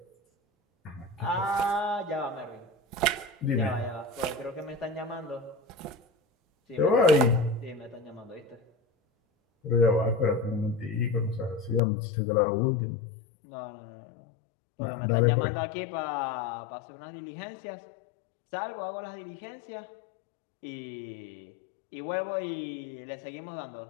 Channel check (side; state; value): right; drops out; at 11.8 s